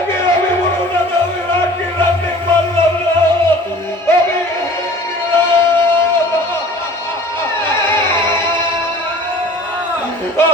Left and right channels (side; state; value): both; normal; correlation 0.46